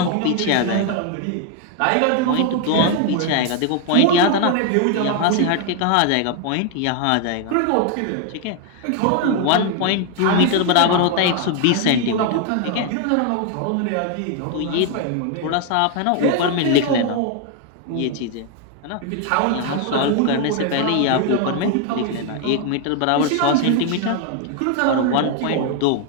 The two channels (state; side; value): different; both; correlation 0.01